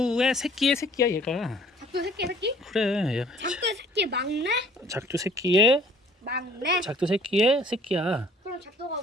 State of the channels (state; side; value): normal; both; correlation 0.55